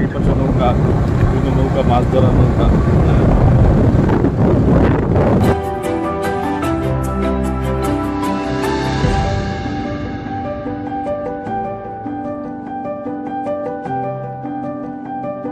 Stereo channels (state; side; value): identical; both; correlation 1.00